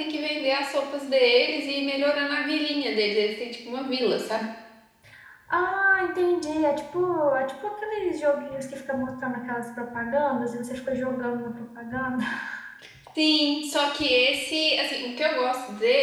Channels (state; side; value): identical; both; correlation 1.00